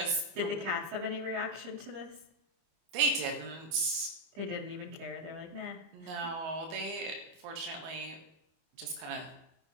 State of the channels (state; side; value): late; left; 25 ms